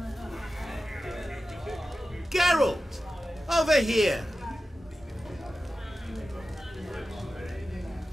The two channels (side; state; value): both; normal; correlation 0.93